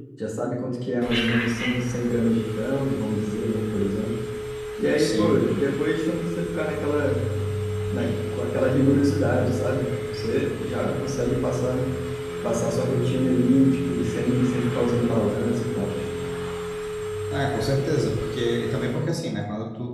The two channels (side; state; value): both; identical; correlation 1.00